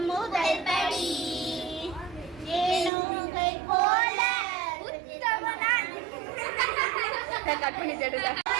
முதல் படி. ஏனோகை போல உத்தமனான் கட் பண்ணி தேடுங்க.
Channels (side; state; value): left; drops out; at 2.9 s